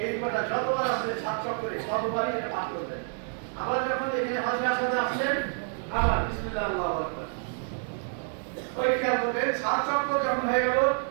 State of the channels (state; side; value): silent; left; 59 dB below the other